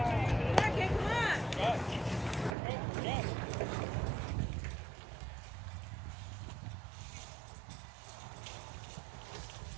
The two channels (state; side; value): drops out; left; at 2.6 s